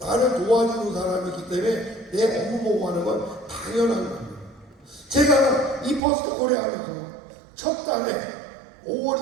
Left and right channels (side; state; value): left; drops out; at 6.0 s